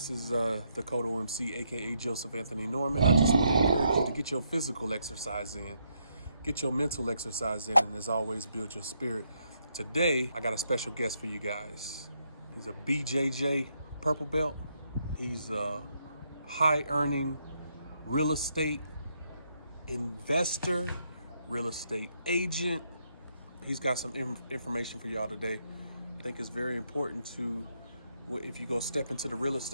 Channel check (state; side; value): inverted; both; correlation -0.76